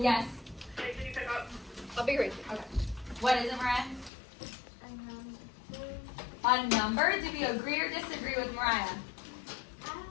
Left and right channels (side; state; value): right; drops out; at 4.1 s